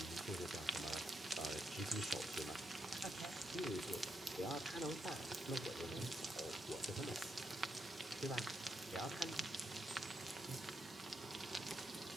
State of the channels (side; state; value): both; normal; correlation 0.81